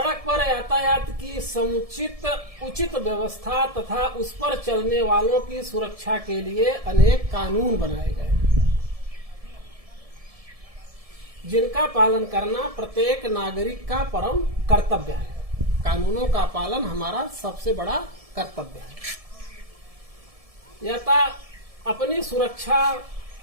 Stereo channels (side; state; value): left; late; 1.7 ms